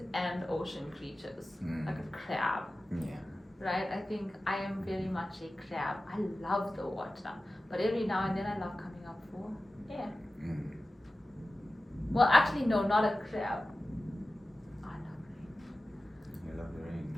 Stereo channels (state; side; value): normal; both; correlation 0.95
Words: and ocean creatures, like a crab. Right? I think I am very much a crab. I love the water, but every now and then I love coming up for air. Well, actually, no, not a crab. I love rain. You love the rain.